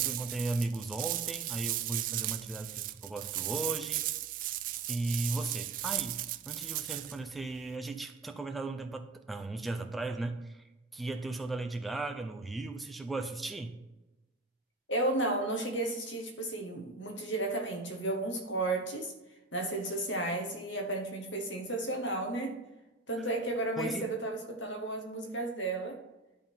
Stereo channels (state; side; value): quieter; left; 3.3 dB